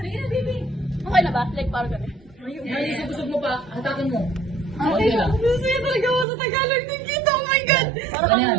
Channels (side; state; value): left; drops out; at 6.2 s